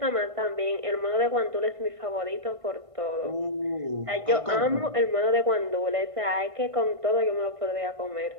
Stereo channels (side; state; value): left; late; 1.5 ms